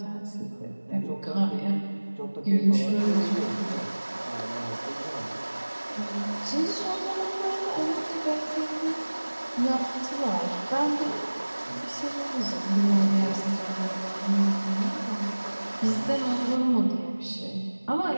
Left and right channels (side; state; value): both; inverted; correlation -1.00